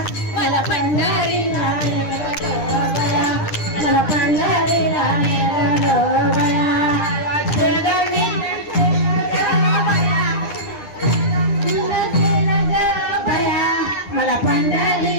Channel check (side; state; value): right; late; 9.9 ms